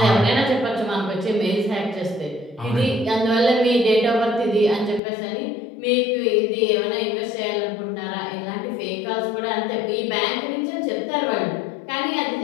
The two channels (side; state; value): right; drops out; at 5.0 s